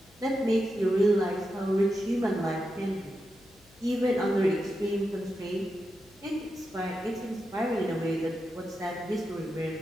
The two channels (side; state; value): left; noise; hum, 29 dB below the sound